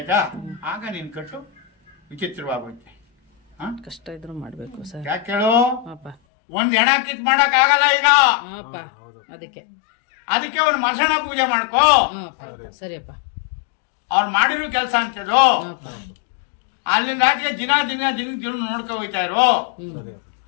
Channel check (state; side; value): drops out; right; at 6.2 s